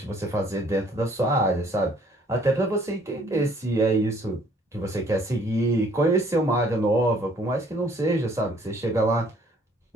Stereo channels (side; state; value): both; normal; correlation 0.60